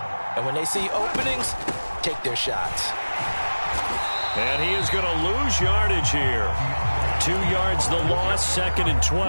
And when they see openings, take their shots. And he is going to lose yardage here. 2 yards the loss, 2nd and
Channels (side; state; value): both; inverted; correlation -1.00